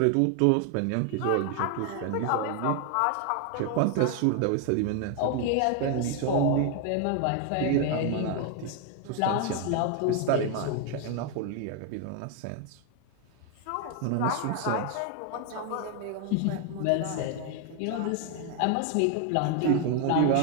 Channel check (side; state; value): both; different; correlation 0.01